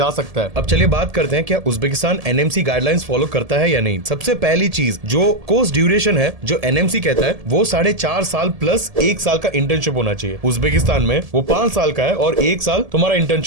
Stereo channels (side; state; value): left; late; 1.7 ms